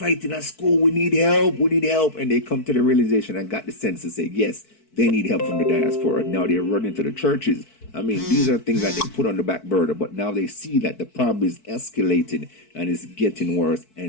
at school. We need help. We need help. And they come to the realization and got the sense to say, yes, they need help from the diaspora. Now they're running to the churches. I mean, these are things that they put on the back burner, but now they see that the problem is escalating and it's getting worse,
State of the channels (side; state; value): right; late; 4.6 ms